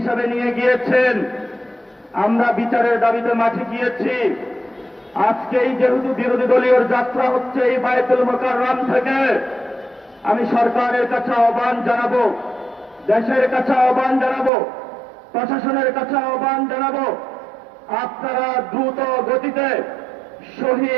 নিয়ে গিয়েছেন। আমরা বিচারের দাবিতে মাঠে গিয়েছি। আজকেই যেহেতু বিরোধী দলীয় যাত্রা হচ্ছে এই বায়তুল মোকাররম থেকে, আমি সরকারের কাছে আহ্বান জানাবো, দেশের কাছে আহ্বান জানাবো, প্রশাসনের কাছে আহ্বান জানাবো, আপনারা দ্রুত গতিতে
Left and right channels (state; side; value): drops out; left; at 14.5 s